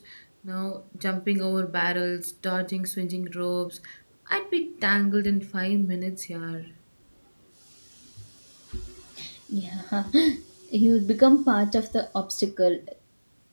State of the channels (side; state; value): both; inverted; correlation -1.00